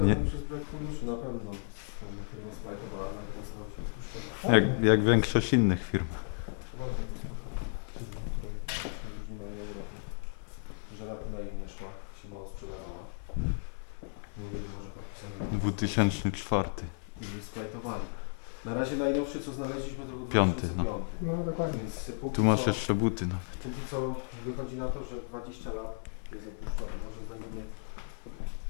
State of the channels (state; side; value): silent; right; 55 dB below the other